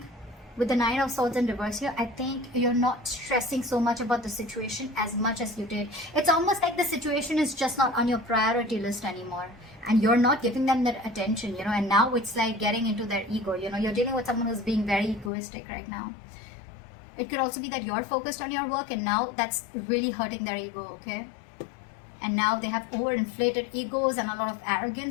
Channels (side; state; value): right; drops out; at 15.3 s